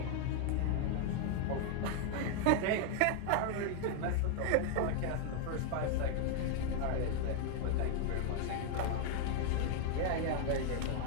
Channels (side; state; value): both; different; correlation 0.00